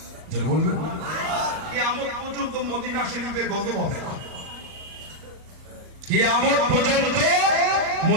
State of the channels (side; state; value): left; late; 38 ms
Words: যারা বলবেন কিয়ামত পর্যন্ত মদিনা শরীফে গজব হবে না, কিয়ামত পর্যন্ত